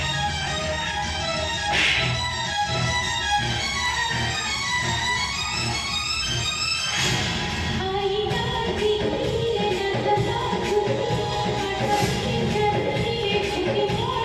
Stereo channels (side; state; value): both; identical; correlation 1.00